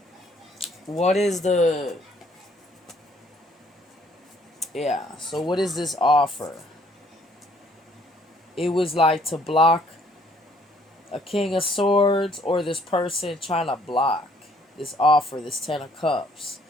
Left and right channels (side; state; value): both; normal; correlation 0.63